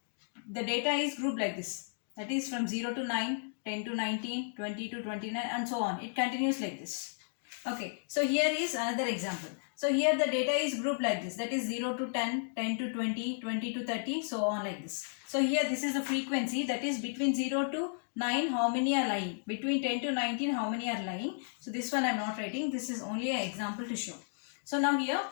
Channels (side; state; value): right; silent; digital silence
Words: the data is grouped like this, that is from 0 to 9, 10 to 19, 20 to 29 and so on. It continues like this. Okay, so here is another example. So here the data is grouped like this, that is 0 to 10, 10 to 20, 20 to 30, so on like this. So here this is the frequency, that is between 0 to 9 how many are lying, between 10 to 19 how many are lying. So this one I am not writing, this is only an example to show. So now here